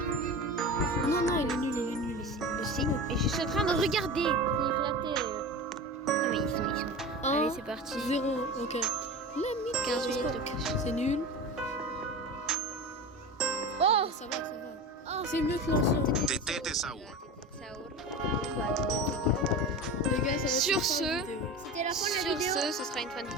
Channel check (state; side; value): normal; both; correlation 0.29